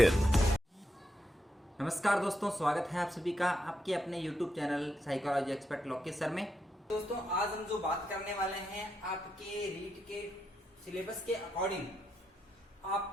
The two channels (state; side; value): normal; both; correlation 0.83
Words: नमस्कार दोस्तों, स्वागत है आप सभी का आपके अपने YouTube channel psychology expert Lokesh sir में। दोस्तों आज हम जो बात करने वाले हैं आपके रीट के सिलेबस के अकॉर्डिंग